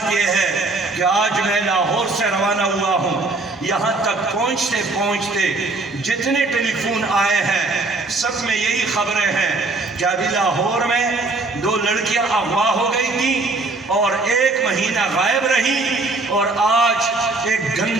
یہ ہے کہ آج میں لاہور سے روانہ ہوا ہوں، یہاں تک پہنچتے پہنچتے جتنے ٹیلی فون آئے ہیں سب میں یہی خبریں ہیں کہ ابھی لاہور میں 2 لڑکیاں اغوا ہو گئی تھیں اور 1 مہینہ غائب رہی، اور آج ایک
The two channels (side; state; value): left; quieter; 3.4 dB